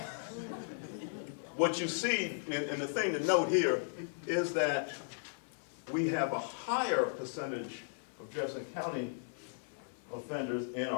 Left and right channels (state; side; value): silent; right; 54 dB below the other